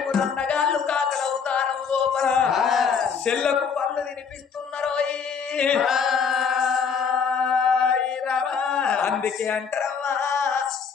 అన్నగాళ్ళు కాకల అవతారం లోపల చెల్లకు పండ్లు తినిపిస్తున్నారు. అందుకే అంటారమ్మా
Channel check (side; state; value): right; quieter; 6.2 dB